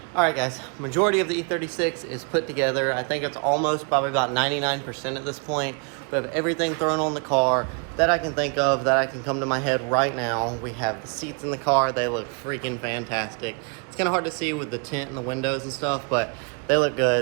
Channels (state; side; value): quieter; left; 35.4 dB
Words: Alright guys, majority of the E36 is put together. I think it's almost probably about 99% at this point. We have everything thrown on the car that I can think of, that I can come to my head right now. We have the seats in the car. They look freaking fantastic. It's kind of hard to see with the tint and the windows and stuff, but they look